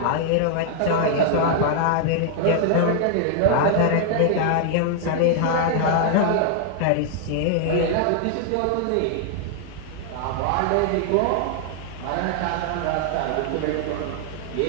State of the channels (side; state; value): both; different; correlation 0.00